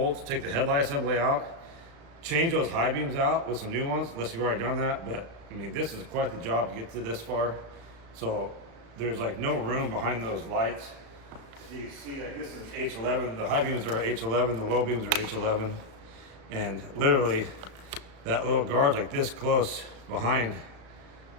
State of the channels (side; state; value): left; late; 35 ms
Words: take the headlight assembly out, change those high beams out with some new ones, unless you've already done that. But I mean, this is quite the job to get to this far. So there's like no room behind those lights. You see, like, this is H11. The high beams are H11, the low beams are H11, and literally that little guard's like this close behind